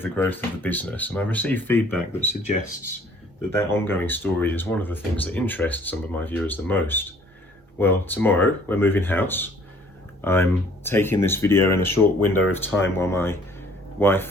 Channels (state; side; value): normal; both; correlation 0.57